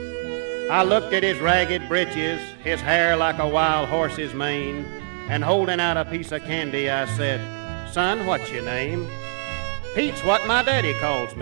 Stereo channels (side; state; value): left; silent; 63 dB below the other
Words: I looked at his ragged breeches, his hair like a wild horse's mane, and holding out a piece of candy I said, "Son, what's your name?" "Pete's what my daddy calls